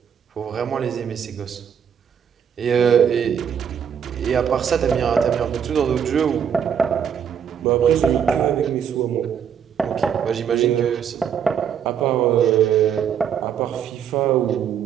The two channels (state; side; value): quieter; left; 8.1 dB